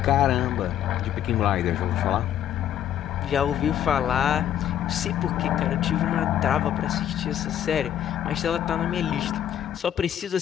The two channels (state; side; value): quieter; right; 10.6 dB